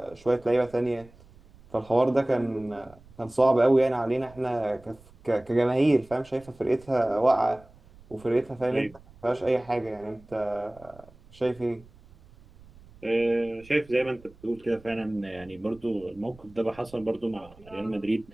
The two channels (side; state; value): right; noise; rumble, 24 dB below the sound